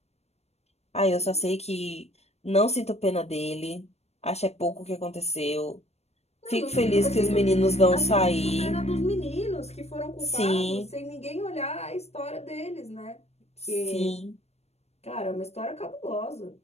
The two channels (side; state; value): right; late; 0.31 ms